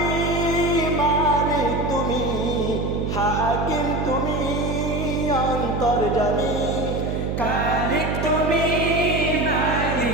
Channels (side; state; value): right; noise; hum, 2 dB below the sound